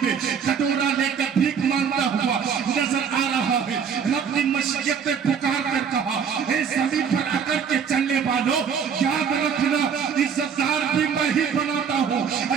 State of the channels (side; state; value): left; quieter; 7.0 dB